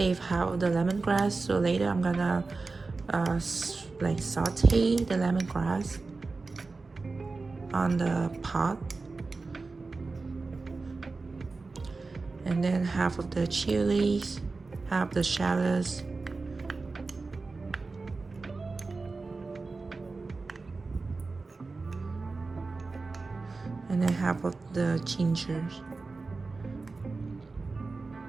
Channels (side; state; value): left; quieter; 3.9 dB